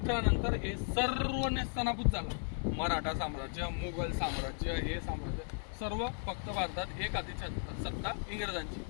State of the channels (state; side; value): silent; right; 54 dB below the other